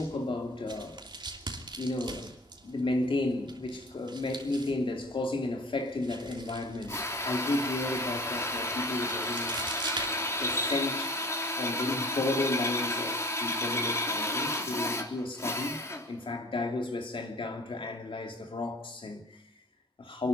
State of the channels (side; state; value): both; normal; correlation 0.45